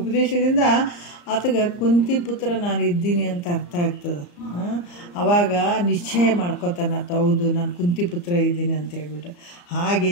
ಆತಗೆ ಕುಂತಿ ಪುತ್ರ ನಾನು ಇದ್ದೀನಿ ಅಂತ ಅರ್ಥ ಆಗ್ತದೆ. ಆವಾಗ ನಿಶ್ಚಯ ಮಾಡ್ಕೋತಾನೆ ಆತ, ಹೌದು ನಾನು ಕುಂತಿ ಪುತ್ರ ಇದ್ದೀನಿ ಅಂತ ಹೇಳ್ಬಿಟ್ಟು.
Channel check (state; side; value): late; right; 34 ms